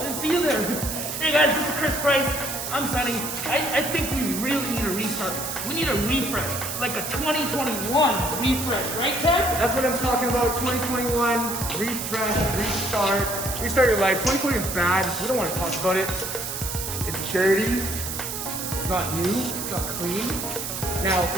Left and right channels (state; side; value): noise; right; hiss, 5 dB below the sound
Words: didn't see you there. Hey guys, this is Chris Price. I'm Sonny. I think we really need a restart. We need a refresh, like a 2021 refresh, right, Ted? That's what I'm talking about. 2021, refresh, restart. Restart your life. 2020 is bad. We don't want to talk about it. It's dirty. It's not new. It's not clean. Now,